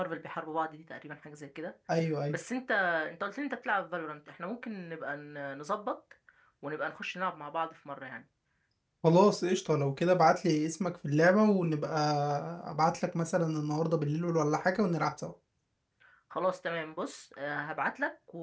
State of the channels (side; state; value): both; identical; correlation 1.00